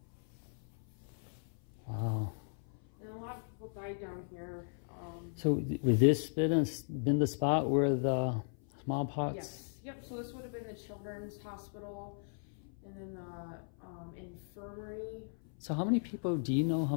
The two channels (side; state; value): right; silent; 53 dB below the other